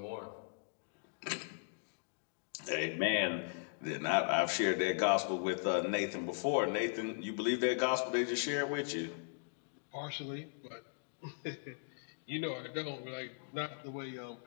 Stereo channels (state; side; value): silent; right; digital silence